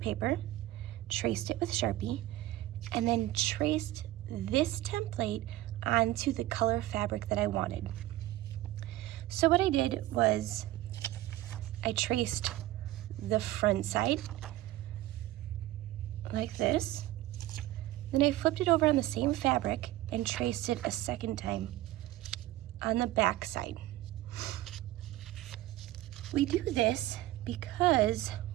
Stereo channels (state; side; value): quieter; left; 16.0 dB